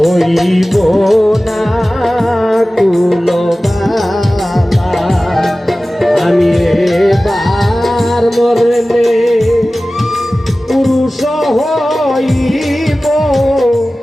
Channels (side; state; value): both; normal; correlation 0.97